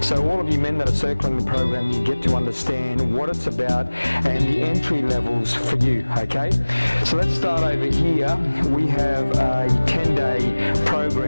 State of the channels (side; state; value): both; inverted; correlation -1.00